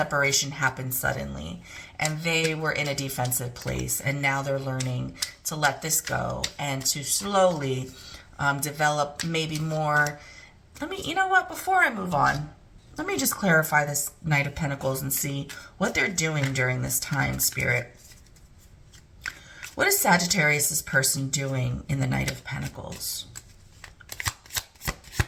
happened suddenly, and they were in a defensive place, and now they're learning to let this go and to slowly develop maybe more. You know what, before I move on, let me just clarify this Knight of Pentacles and see what they're doing during this time, Spirit. What is Sagittarius' person doing in the Knight of Pentacles?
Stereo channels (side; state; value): both; identical; correlation 1.00